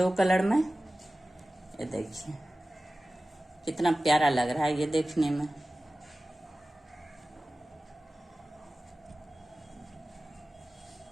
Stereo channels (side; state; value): both; normal; correlation 0.96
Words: कलर में। ये देखिए कितना प्यारा लग रहा है ये देखने में।